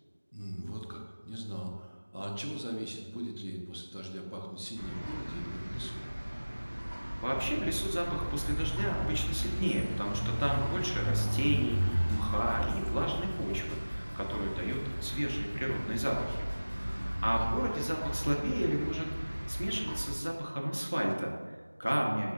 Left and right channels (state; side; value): inverted; both; correlation -1.00